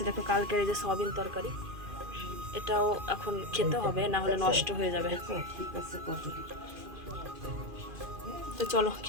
দেখো কালকের এই যে সয়াবিন তরকারি, এটাও এখন খেতে হবে, না হলে নষ্ট হয়ে যাবে। তো চলো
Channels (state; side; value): late; left; 2.4 ms